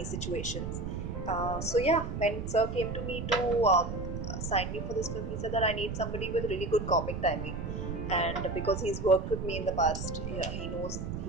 situations. So yeah, when Sir came to me to sign me for this film, he said that I need somebody with really good comic timing, and because he's worked with me in the past, yeah, he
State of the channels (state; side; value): noise; right; rumble, 5 dB below the sound